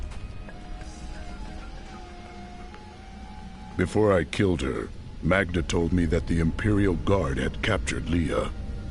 Before I killed her, Magda told me that the Imperial Guard had captured Leah.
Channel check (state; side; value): identical; both; correlation 1.00